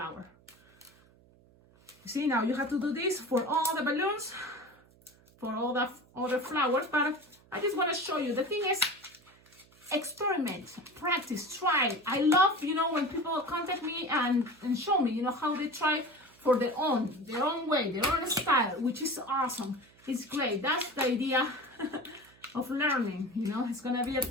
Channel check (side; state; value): right; noise; hum, 28 dB below the sound